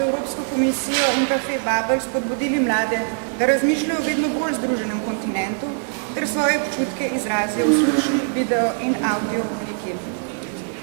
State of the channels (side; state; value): left; silent; 64 dB below the other